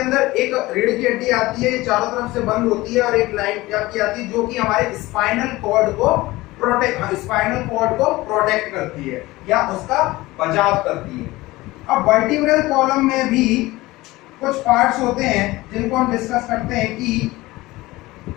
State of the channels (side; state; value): right; quieter; 19.5 dB